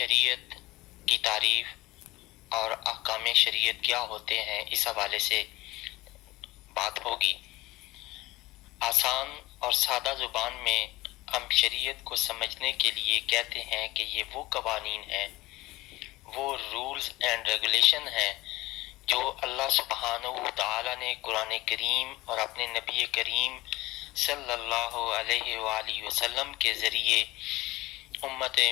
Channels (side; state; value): right; quieter; 19.4 dB